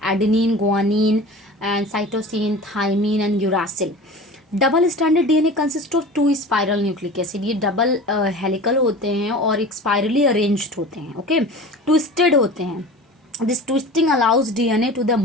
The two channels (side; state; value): both; normal; correlation 0.37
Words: adenine, guanine, and cytosine, thymine, and uracil. Double standard DNA consist of two spiral nucleic acid. ये double helical होते हैं और एक spirally arranged होते हैं, okay, twisted होते हैं. This twisting allows DNA